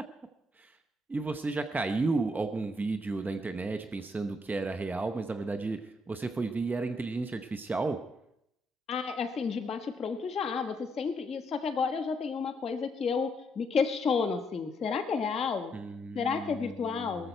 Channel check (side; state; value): both; normal; correlation 0.75